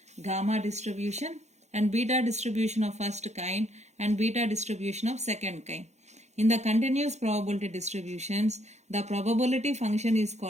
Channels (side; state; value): left; late; 0.33 ms